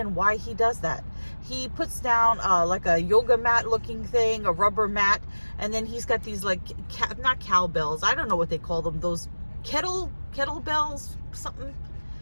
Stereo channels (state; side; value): inverted; both; correlation -1.00